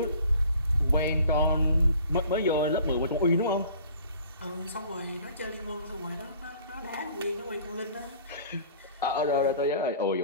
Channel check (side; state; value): both; inverted; correlation -0.50